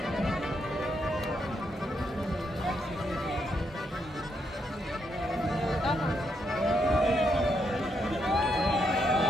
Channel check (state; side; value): normal; both; correlation 0.78